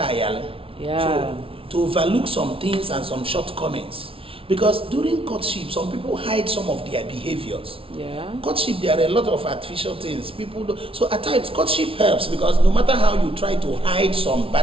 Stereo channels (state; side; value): late; left; 0.26 ms